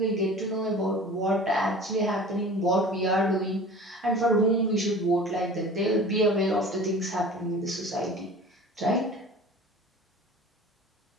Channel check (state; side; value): normal; both; correlation 0.41